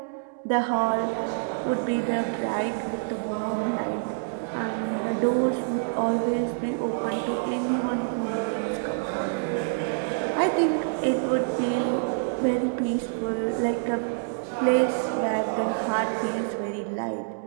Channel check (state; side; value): silent; left; digital silence